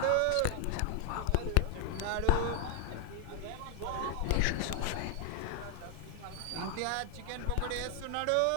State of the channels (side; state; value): both; different; correlation 0.00